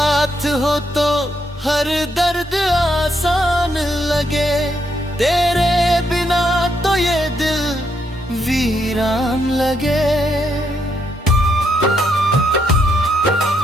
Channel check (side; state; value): both; normal; correlation 0.77